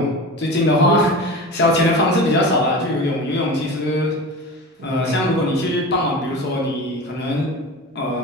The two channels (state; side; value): normal; both; correlation 0.32